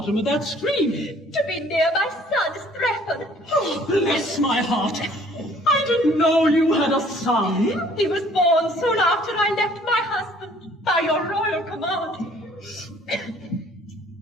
of that stream. To be near my son, Strephon. Oh, bless my heart. I didn't know you had a son. He was born soon after I left my husband, by your royal command.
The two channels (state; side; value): normal; both; correlation 0.57